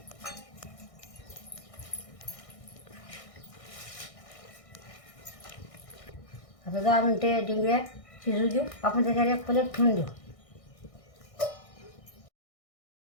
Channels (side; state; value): right; late; 1.6 ms